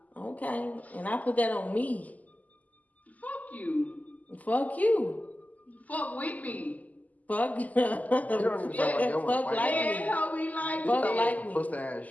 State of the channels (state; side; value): late; right; 0.077 ms